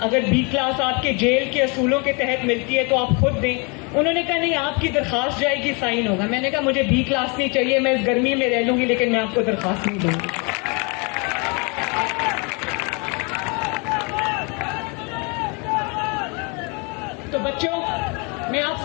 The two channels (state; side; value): quieter; right; 32.2 dB